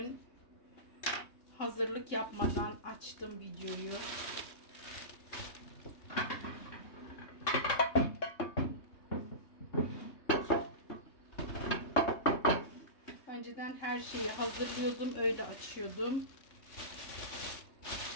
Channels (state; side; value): late; right; 3.2 ms